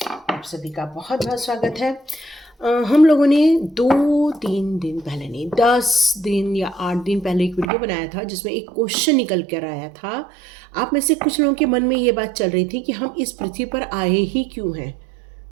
आप सभी का बहुत बहुत स्वागत है। हम लोगों ने 2-3 दिन पहले नहीं, 10 दिन या 8 दिन पहले एक वीडियो बनाया था जिसमें एक क्वेश्चन निकल कर आया था। आप में से कुछ लोगों के मन में ये बात चल रही थी कि हम इस पृथ्वी पर आए ही क्यों हैं।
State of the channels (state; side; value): drops out; left; at 7.7 s